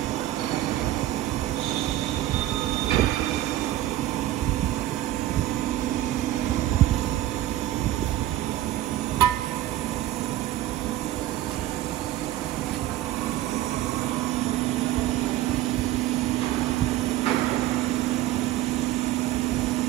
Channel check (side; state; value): left; quieter; 14.2 dB